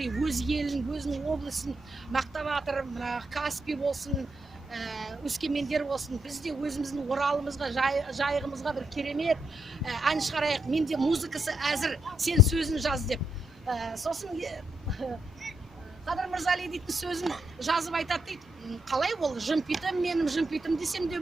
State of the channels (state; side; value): normal; both; correlation 0.79